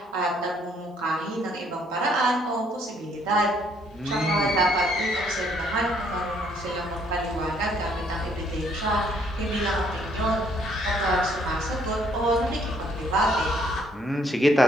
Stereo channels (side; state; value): both; normal; correlation 0.66